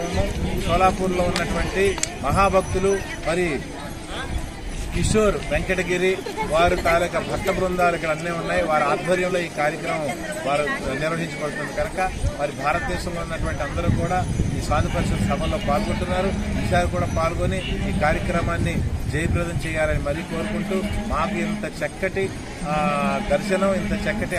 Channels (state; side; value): identical; both; correlation 1.00